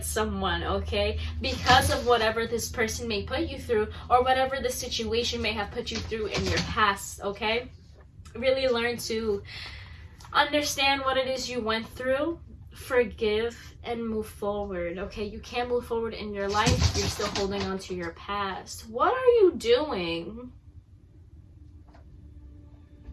someone, okay? Because of whatever this person may put you through or whatever the situation may have put you through in your past, okay? Really learn to understand what it is you went through, forgive, and move forward, okay? You can't move forward in your life if you're still holding on to your past. What are you doing?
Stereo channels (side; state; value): both; identical; correlation 1.00